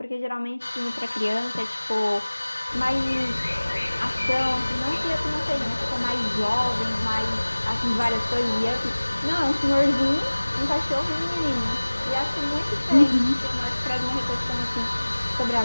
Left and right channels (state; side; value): inverted; both; correlation -1.00